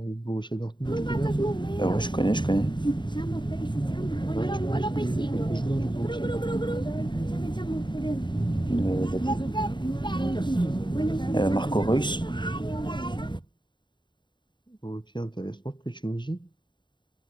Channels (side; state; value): right; late; 0.22 ms